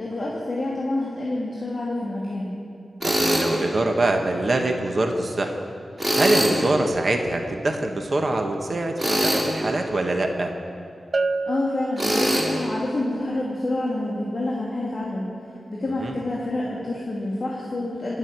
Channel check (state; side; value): normal; both; correlation 0.93